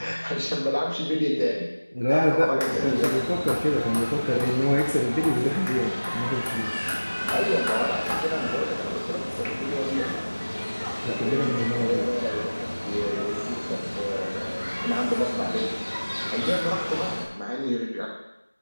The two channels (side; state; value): both; inverted; correlation -1.00